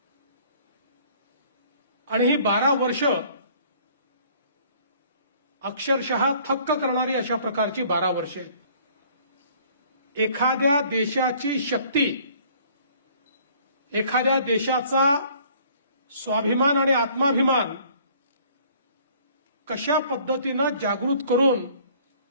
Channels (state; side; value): inverted; both; correlation -0.56